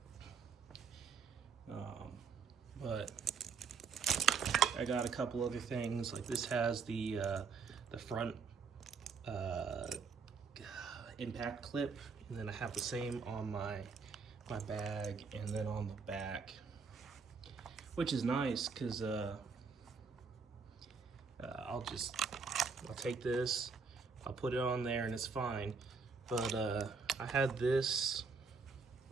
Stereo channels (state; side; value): quieter; left; 5.2 dB